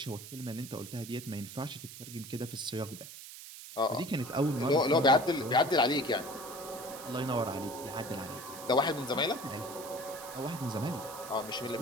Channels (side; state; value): right; noise; hiss, 13 dB below the sound